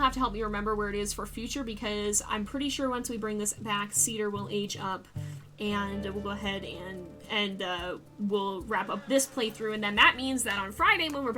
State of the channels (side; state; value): both; identical; correlation 1.00